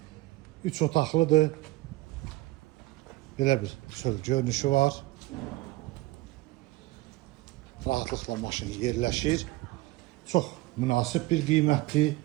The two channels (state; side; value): quieter; left; 19.0 dB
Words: 3 otaqlıdır. Belə bir çöl görünüşü var. Rahatlıqla maşın yerləşir. Çox münasib bir qiymətdir.